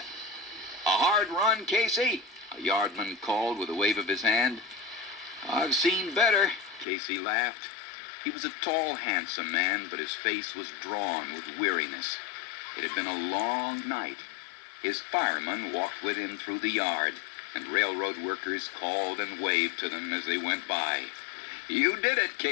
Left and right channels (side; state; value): right; drops out; at 6.9 s